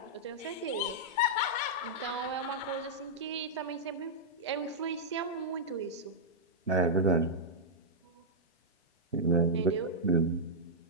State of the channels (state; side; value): normal; both; correlation -0.09